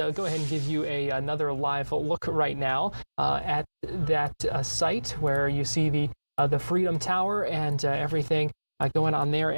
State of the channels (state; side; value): inverted; both; correlation -1.00